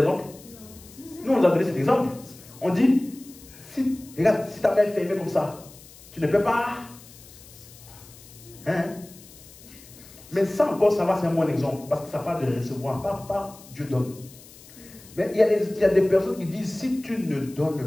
Nous, on nous a donné cet exemple. On dit, si, regarde, si ta main est fermée comme ça, tu ne peux pas. Hein? Mais ça encore, ça va, c'est un bon exemple. Parce que ça parle de recevoir, pas Dieu donne. Mais il y a des personnes qui disent, si tu ne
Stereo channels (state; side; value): noise; left; hiss, 21 dB below the sound